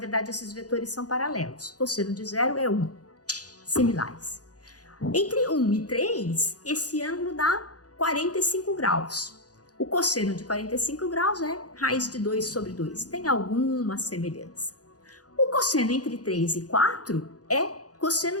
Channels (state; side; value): late; right; 0.68 ms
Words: esses vetores são paralelos. Cosseno de 0 é 1, similares. Entre 1 e 3, esse ângulo dá 45 graus. O cosseno de 45 graus é raiz de 2 sobre 2. Tem alguma semelhança. O cosseno entre 3 e 4 é